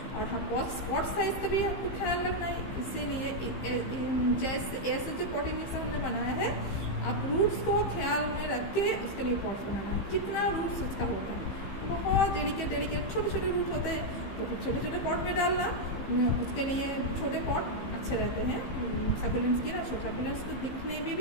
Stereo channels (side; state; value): right; late; 15 ms